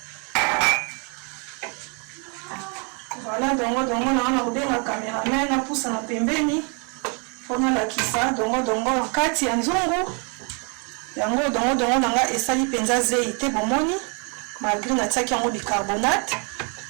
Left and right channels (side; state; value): left; quieter; 35.6 dB